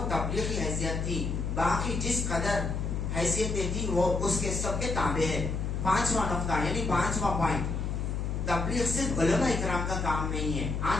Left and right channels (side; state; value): left; noise; hum, 1 dB below the sound